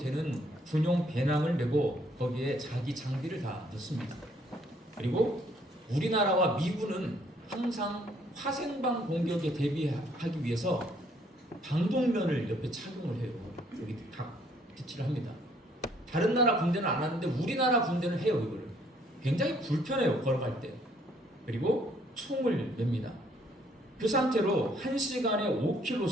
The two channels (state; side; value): normal; both; correlation 0.65